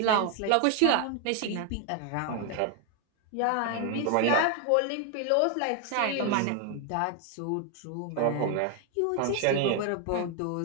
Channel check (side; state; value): both; different; correlation 0.01